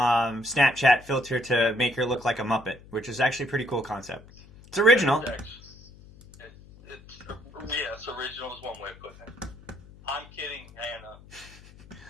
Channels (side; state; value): left; noise; hum, 21 dB below the sound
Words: filter to make her look like a Muppet, which is actually a pretty cool concept. It's original. Yes, original is one way of putting it. I'm kidding, Hannah.